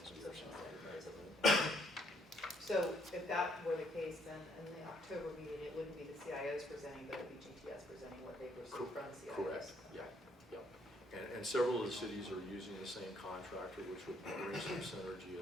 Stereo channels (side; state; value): both; normal; correlation 0.68